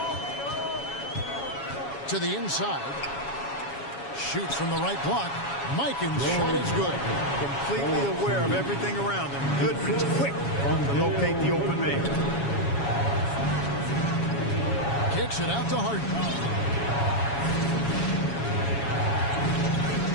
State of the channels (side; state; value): right; late; 7.2 ms